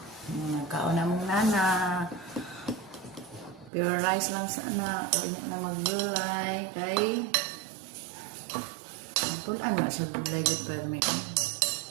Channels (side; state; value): left; drops out; at 3.7 s